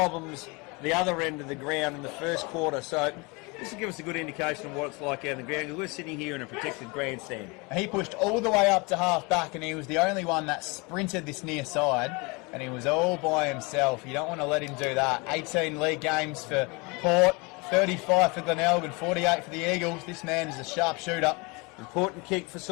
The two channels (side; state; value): right; quieter; 27.9 dB